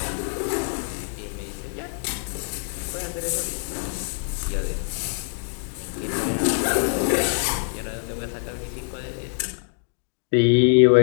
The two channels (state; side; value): silent; right; 62 dB below the other